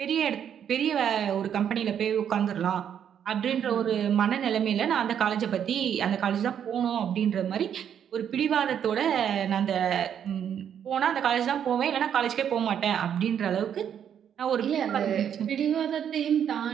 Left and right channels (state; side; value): quieter; left; 8.8 dB